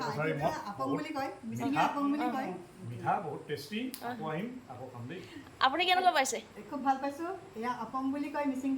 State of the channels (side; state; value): both; identical; correlation 1.00